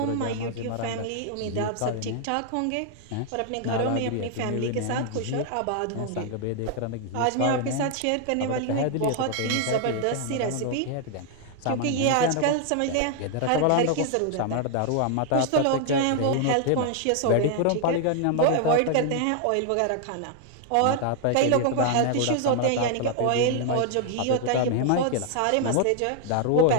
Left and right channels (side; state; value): both; different; correlation 0.00